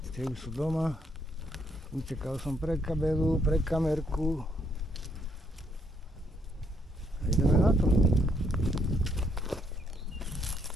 Tie už sú doma. Utekal som pre kabelu, pre kamerku. A ideme na to.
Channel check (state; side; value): normal; both; correlation 0.72